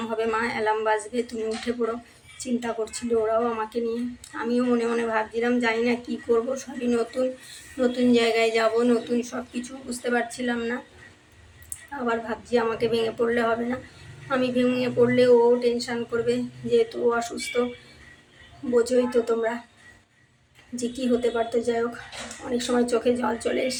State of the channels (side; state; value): both; identical; correlation 1.00